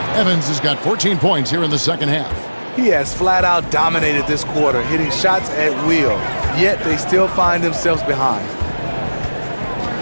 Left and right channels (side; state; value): both; inverted; correlation -1.00